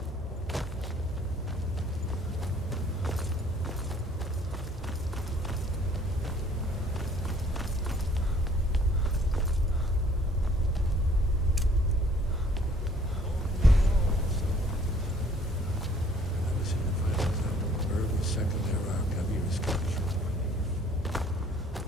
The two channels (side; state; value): both; normal; correlation 0.58